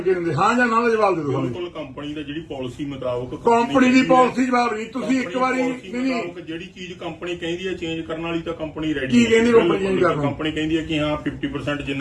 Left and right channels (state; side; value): identical; both; correlation 1.00